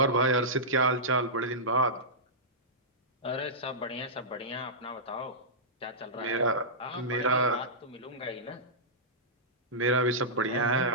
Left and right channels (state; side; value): normal; both; correlation -0.15